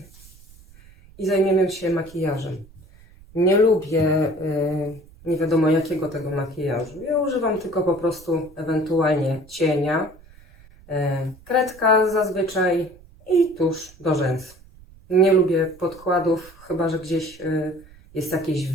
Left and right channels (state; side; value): noise; right; rumble, 24 dB below the sound